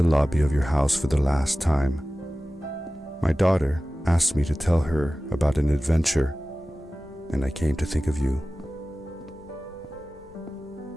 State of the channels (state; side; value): normal; both; correlation 0.96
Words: lobby of your house for the last time. My daughter asked me to tell her about an adventure, and I came to think of you.